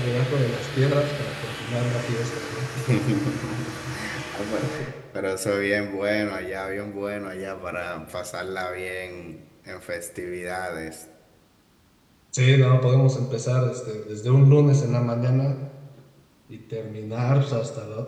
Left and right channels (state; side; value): identical; both; correlation 1.00